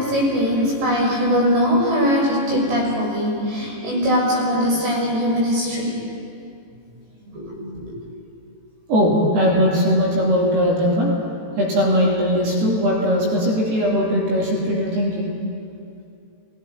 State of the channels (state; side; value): late; left; 18 ms